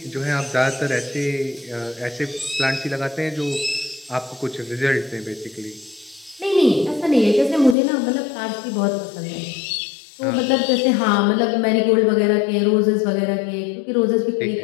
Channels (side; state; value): right; drops out; at 7.8 s